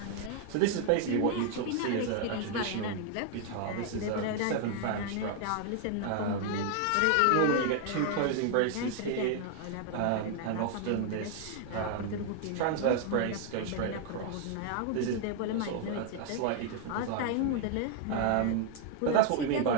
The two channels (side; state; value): both; different; correlation 0.00